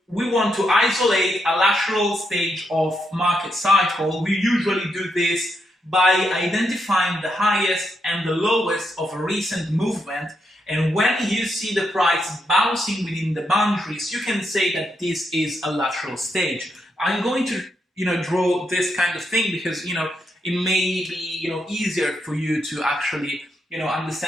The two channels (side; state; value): both; normal; correlation 0.81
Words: want to isolate a lateral stage of market cycle. We usually do this by identifying the highest and the lowest of a recent movement. And when you see the price bouncing within the boundaries, you can say that this is a lateral stage. I'm going to, you know, draw this kind of thing because, you know, it may be, you know, easier for you to actually, you know,